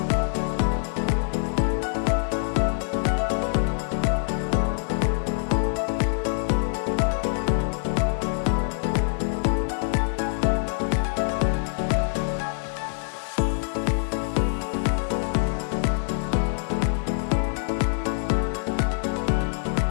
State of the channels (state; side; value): silent; right; 62 dB below the other